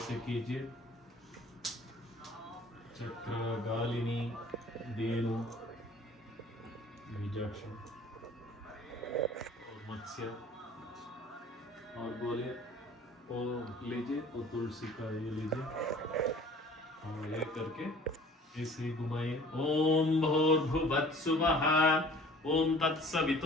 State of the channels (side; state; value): both; normal; correlation 0.49